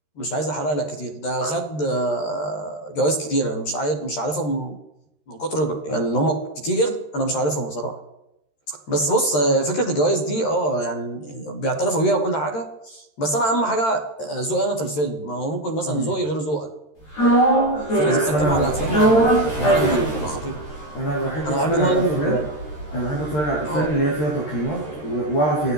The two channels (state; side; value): late; right; 13 ms